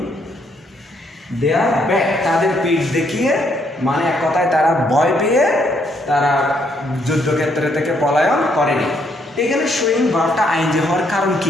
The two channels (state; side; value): normal; both; correlation 0.71